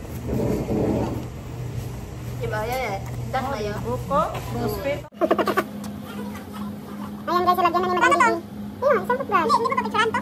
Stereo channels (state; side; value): identical; both; correlation 1.00